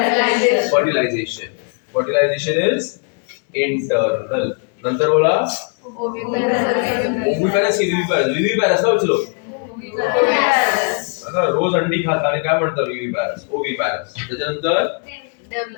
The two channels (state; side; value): quieter; right; 39.3 dB